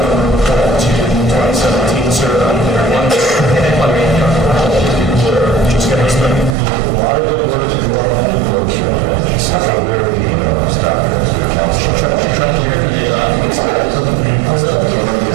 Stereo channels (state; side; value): drops out; left; at 6.6 s